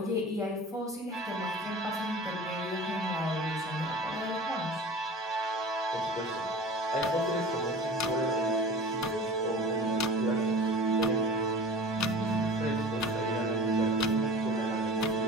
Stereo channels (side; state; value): both; normal; correlation 0.38